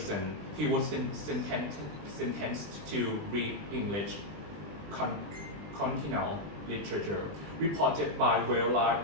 He was sentenced to read English continental literature, reported by Wella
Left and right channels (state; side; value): late; left; 20 ms